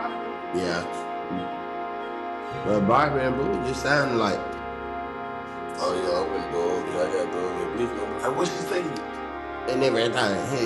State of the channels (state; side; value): identical; both; correlation 1.00